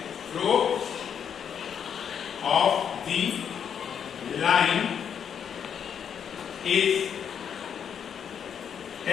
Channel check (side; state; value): right; quieter; 7.9 dB